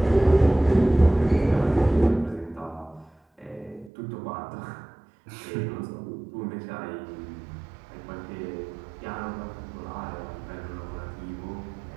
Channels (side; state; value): left; drops out; at 3.9 s